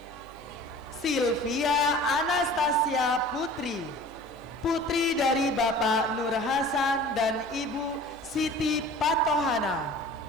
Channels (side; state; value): both; normal; correlation 0.43